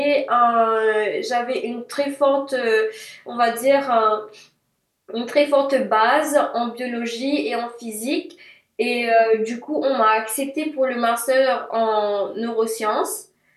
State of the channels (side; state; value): both; identical; correlation 1.00